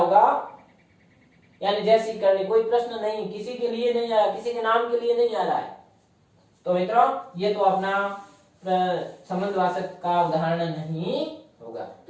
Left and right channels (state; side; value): identical; both; correlation 1.00